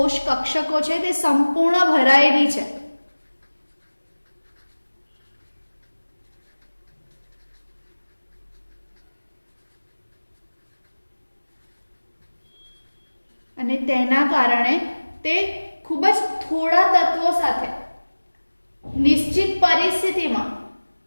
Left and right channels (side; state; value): both; inverted; correlation -1.00